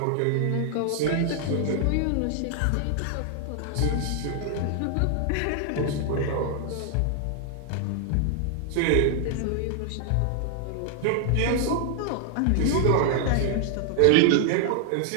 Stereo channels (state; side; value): different; both; correlation 0.00